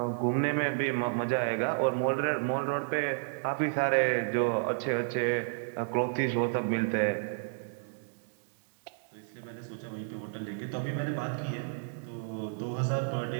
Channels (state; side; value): silent; left; digital silence